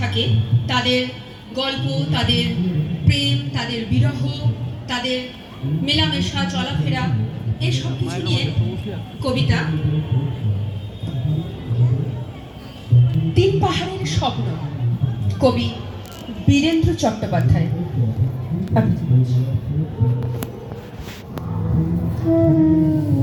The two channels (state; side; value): identical; both; correlation 1.00